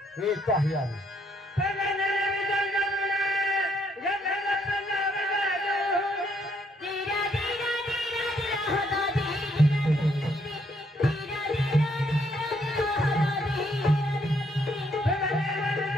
येतो आहे आम्ही.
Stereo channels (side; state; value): both; normal; correlation 0.71